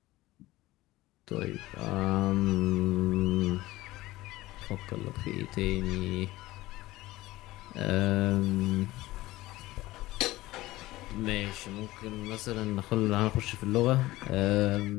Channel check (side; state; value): right; quieter; 17.8 dB